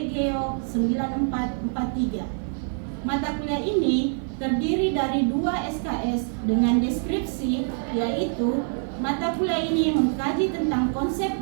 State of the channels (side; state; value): left; silent; 56 dB below the other